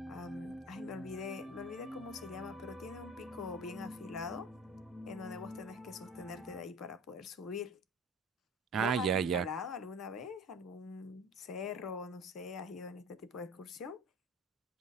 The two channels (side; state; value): both; normal; correlation 0.41